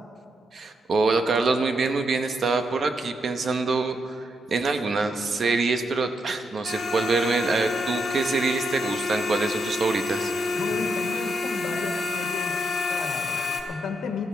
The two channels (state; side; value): normal; both; correlation 0.81